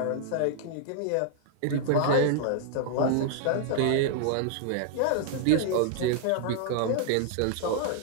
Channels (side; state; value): both; different; correlation -0.01